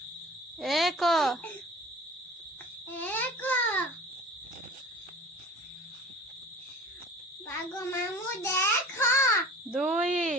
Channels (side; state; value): both; normal; correlation 0.41